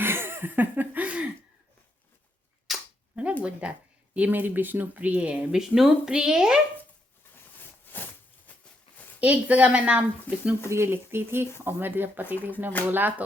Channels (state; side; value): normal; both; correlation 0.78